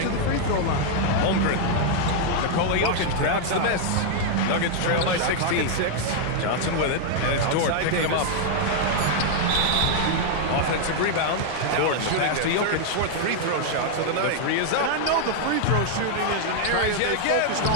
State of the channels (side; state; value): both; different; correlation 0.00